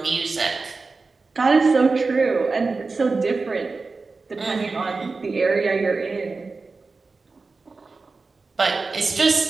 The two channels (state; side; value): quieter; left; 4.0 dB